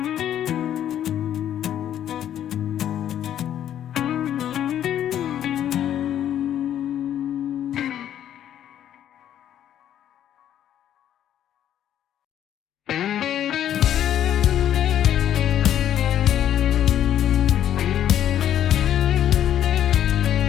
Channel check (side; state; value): right; quieter; 10.7 dB